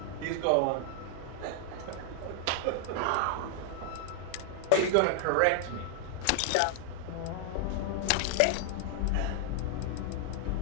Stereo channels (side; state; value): both; different; correlation 0.00